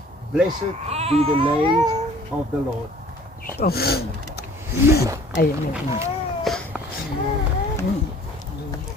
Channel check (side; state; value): both; normal; correlation 0.52